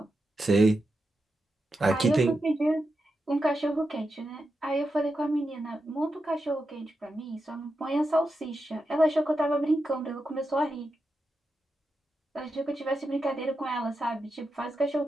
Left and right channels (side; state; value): both; normal; correlation 0.88